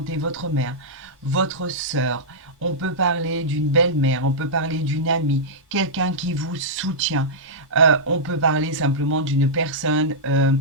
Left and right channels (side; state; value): both; normal; correlation -0.12